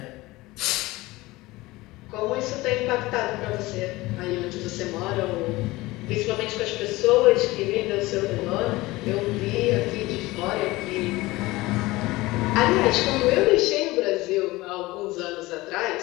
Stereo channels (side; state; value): right; quieter; 20.1 dB